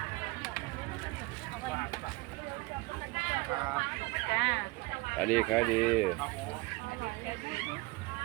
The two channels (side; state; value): left; quieter; 24.0 dB